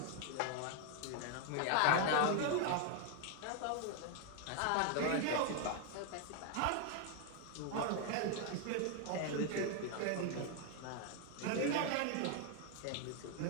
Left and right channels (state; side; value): different; both; correlation 0.00